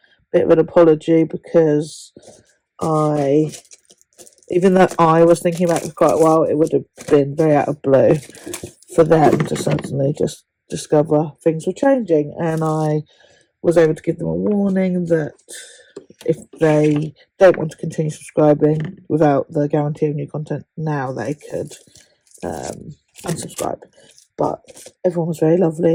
bit of an apology because even though I was thinking about it for quite a while, it would have been very out of blue for them to suddenly just discover things were changing, and I was able to give them a warning that if they don't want to continue subscribing without the guarantee of new content now, they could unsubscribe. But everyone was very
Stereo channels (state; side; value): identical; both; correlation 1.00